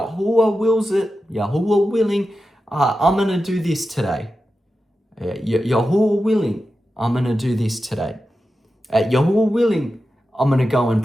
willing, I'm going to do this today. Yahuwah willing, I'm going to do this today. Yahuwah willing, I'm going to go and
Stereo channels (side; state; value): both; normal; correlation 0.92